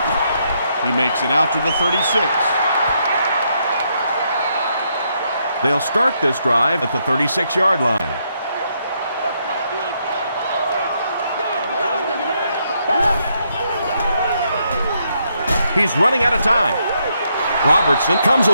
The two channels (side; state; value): both; inverted; correlation -0.76